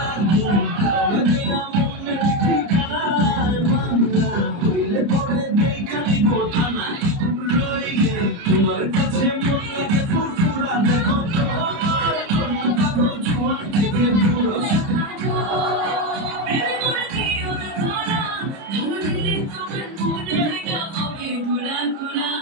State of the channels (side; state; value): left; late; 30 ms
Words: তালে দিয়া মনের ঠিকানায় মামলা হইলে পরে দেখালি বোঠানায় রইলে তোমার কাছে মন লাগে ফুরফুরা দেখো তোমার কোন পাগল জোয়ান থেকে দূর